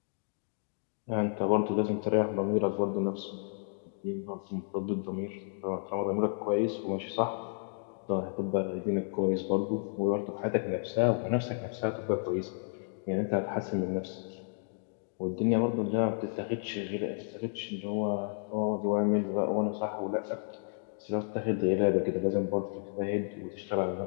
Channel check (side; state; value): right; silent; digital silence